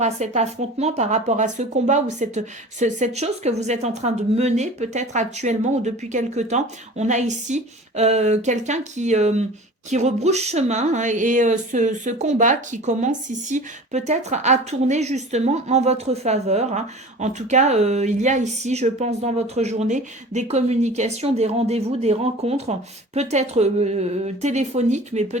à cet affrontement, par rapport à ce combat ou cette chose que vous êtes en train de mener peut-être actuellement ou depuis quelque temps. On a ici quelqu'un qui rebrousse chemin, hein, et ce combat qui commence ici peut-être à tourner justement en votre faveur, hein. En tout cas, il y a ici, je pense, dans votre journée, des communications, des rendez-vous, des rencontres, peut-être téléphoniques, mais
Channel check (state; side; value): normal; both; correlation 0.40